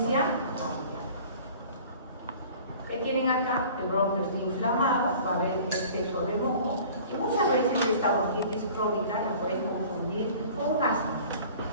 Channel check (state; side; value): inverted; both; correlation -0.46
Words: cardíaca. ¿Qué tienen acá? El bronquio está inflamado, va a haber exceso de moco, y muchas veces esta bronquitis crónica la puedes confundir con un asma,